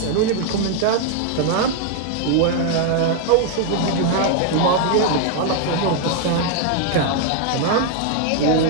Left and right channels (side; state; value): both; different; correlation 0.00